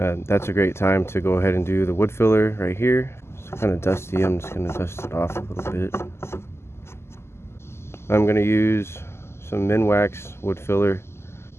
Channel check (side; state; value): right; late; 0.12 ms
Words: a great time to go ahead and do the wood filler right here. It's kind of dusty. I'm just going to dust it off a little bit. I'm going to use some Minwax wood filler.